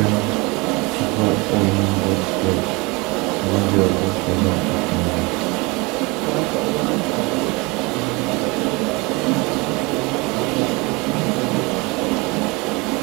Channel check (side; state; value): left; quieter; 25.9 dB